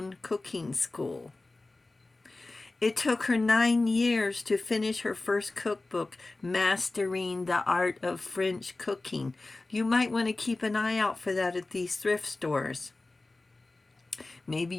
cooking school. It took her 9 years to finish her first cookbook, Mastering the Art of French Cooking. You might want to keep an eye out for that at these thrift stores. Maybe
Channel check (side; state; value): right; quieter; 3.2 dB